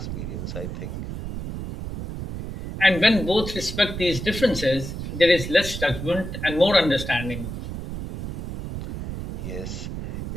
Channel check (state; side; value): noise; right; rumble, 7 dB below the sound